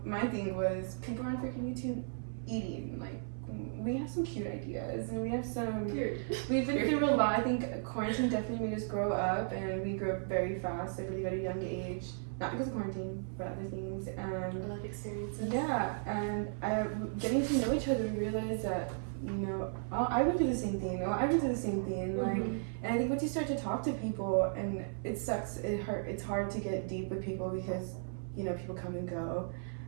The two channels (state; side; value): silent; left; 54 dB below the other